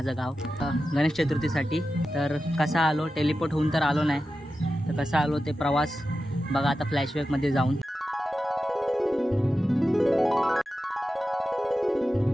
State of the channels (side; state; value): both; normal; correlation 0.92